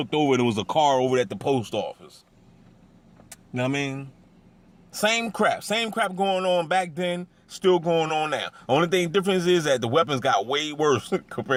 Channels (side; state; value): both; identical; correlation 1.00